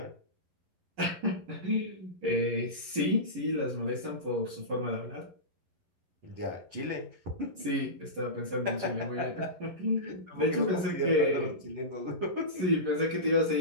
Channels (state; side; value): late; left; 11 ms